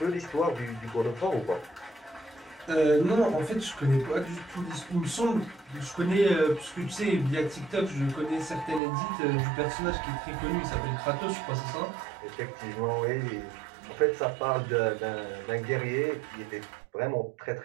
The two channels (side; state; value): left; drops out; at 8.8 s